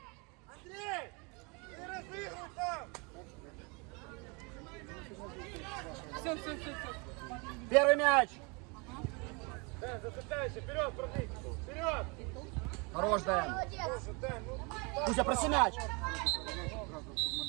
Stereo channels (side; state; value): left; quieter; 30.6 dB